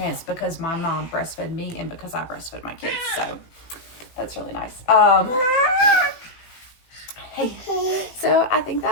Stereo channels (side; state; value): right; late; 18 ms